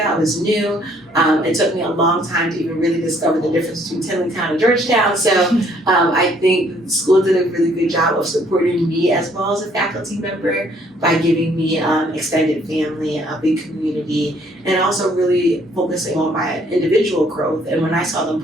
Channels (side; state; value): both; normal; correlation 0.63